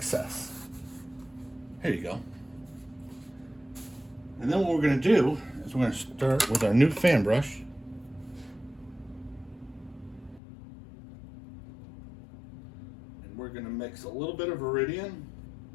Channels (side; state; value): right; drops out; at 10.4 s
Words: Here you go. And then what we're going to do is we're going to start with our new fan brush. And we're going to mix a little bit of Viridian.